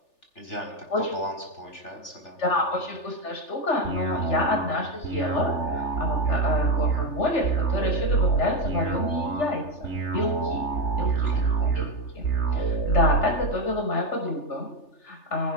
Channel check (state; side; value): late; right; 3.4 ms